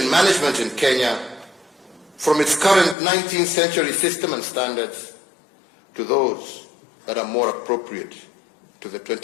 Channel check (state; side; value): drops out; right; at 3.0 s